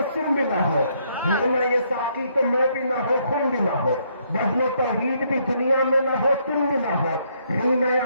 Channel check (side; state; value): both; inverted; correlation -0.71